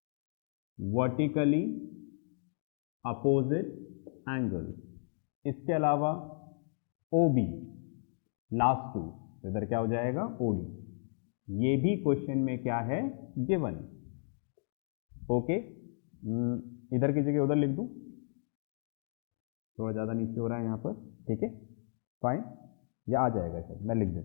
वर्टिकली अपोजिट एंगल्स। इसके अलावा OB लास्ट टू, तो इधर क्या हो जाएगा OD, ये भी क्वेश्चन में क्या है गिवन। ओके, इधर की जगह उधर लिख दूं, थोड़ा ज़्यादा नीचे हो रहा है यहाँ पर, ठीक है, फाइन, या आ जाएगा शायद, मैं लिख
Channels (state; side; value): silent; right; digital silence